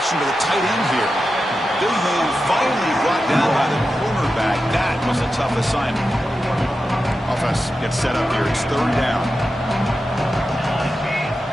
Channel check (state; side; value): normal; both; correlation 0.91